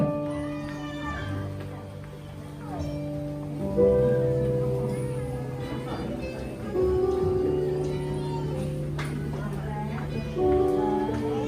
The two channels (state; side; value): identical; both; correlation 1.00